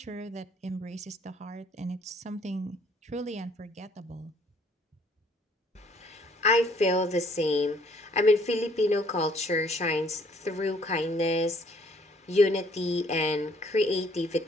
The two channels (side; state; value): both; normal; correlation 0.62